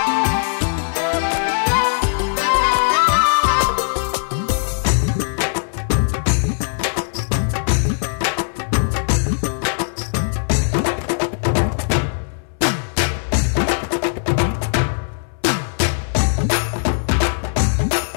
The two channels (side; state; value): right; silent; 66 dB below the other